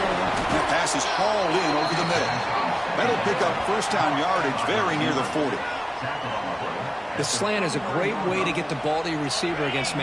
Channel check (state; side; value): identical; both; correlation 1.00